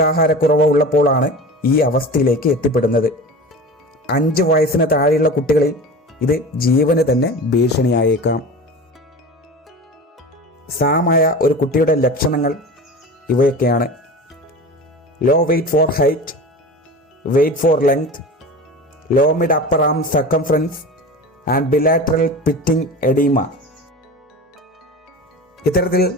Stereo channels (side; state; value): both; normal; correlation 0.33